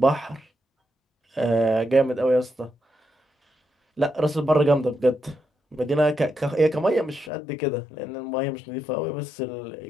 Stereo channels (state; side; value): drops out; right; at 7.3 s